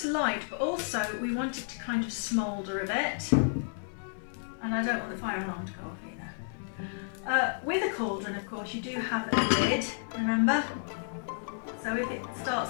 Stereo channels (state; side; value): silent; right; digital silence